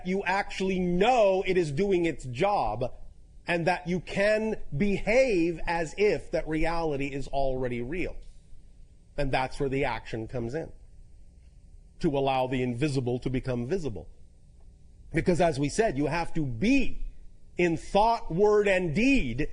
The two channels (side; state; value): both; identical; correlation 1.00